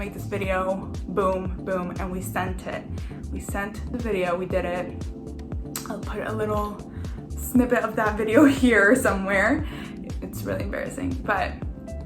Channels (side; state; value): both; identical; correlation 1.00